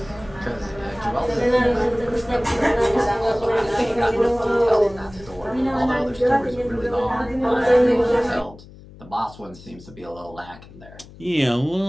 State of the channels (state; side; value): noise; left; hum, 20 dB below the sound